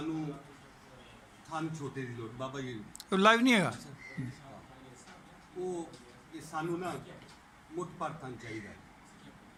थन छोटे की लोड़ बाबा जी लाइव नहीं हैगा। वो ये सानू ना मुठ पर थन चाहिए,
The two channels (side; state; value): both; identical; correlation 1.00